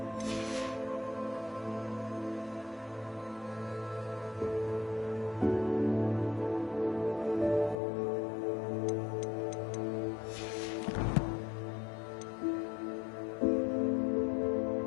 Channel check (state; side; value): drops out; right; at 7.8 s